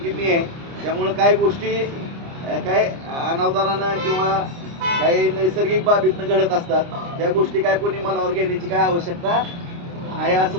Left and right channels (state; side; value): late; left; 29 ms